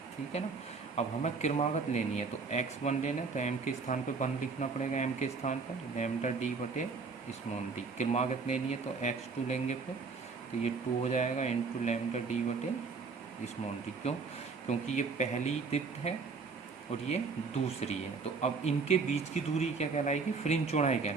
ठीक है ना। अब हमें क्रमागत लेनी है तो x1 लेना है तो m के स्थान पर 1 लिखना पड़ेगा, m के स्थान पर लैम्डा d बटे स्मॉल d। क्रमागत लेनी है तो x2 लेंगे फिर, तो ये 2 हो जाएगा इंटू लैम्डा d बटे स्मॉल d। क्यों, क्योंकि ये पहली दीप्त है और ये दूसरी है। तो अब इनके बीच की दूरी क्या कहलाएगी, फ्रिंज चौड़ाई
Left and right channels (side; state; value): left; quieter; 4.7 dB